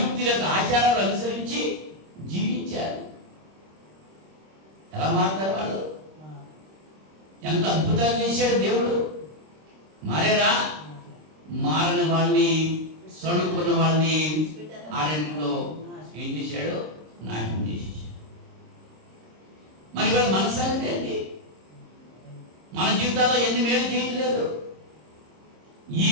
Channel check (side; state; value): left; late; 26 ms